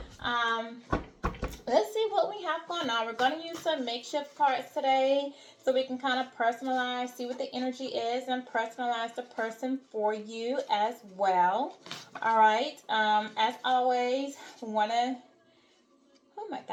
let's see what we have going on. We're going to use some makeshift cards today so we can kind of personalize, see what the energy is, and personalize the person for you as well. All right. As always, want to. Oh my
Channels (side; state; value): both; identical; correlation 1.00